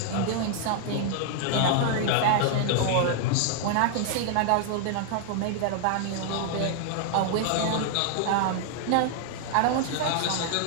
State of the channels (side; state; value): both; different; correlation 0.00